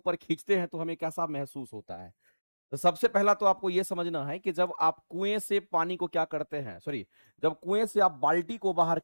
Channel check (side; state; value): both; inverted; correlation -1.00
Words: खींचते हैं तो हमें कैसा महसूस होता है। तो सबसे पहला तो आपको यह समझना है कि जब आप कुएं से पानी को क्या करते हैं, सॉरी, जब कुएं से आप बाल्टी को बाहर